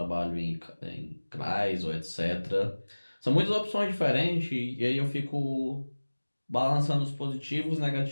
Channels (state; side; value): inverted; both; correlation -1.00